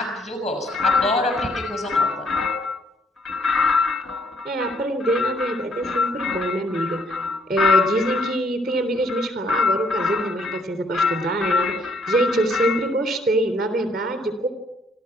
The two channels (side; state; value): both; normal; correlation 0.68